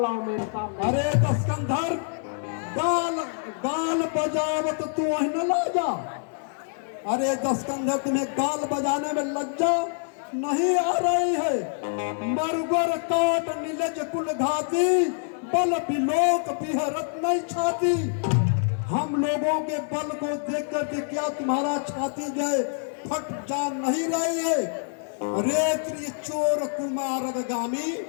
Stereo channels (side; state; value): right; silent; digital silence